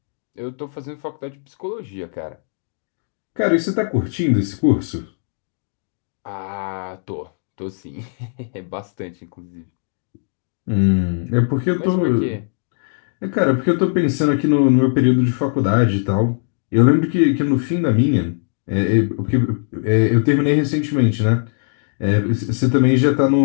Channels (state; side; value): silent; right; digital silence